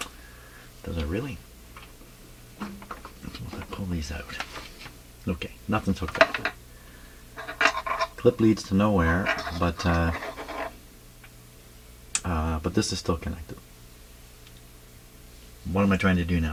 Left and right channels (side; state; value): both; identical; correlation 1.00